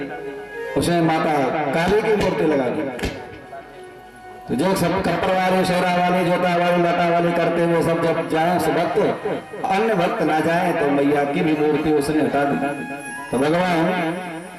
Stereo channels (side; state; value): both; identical; correlation 1.00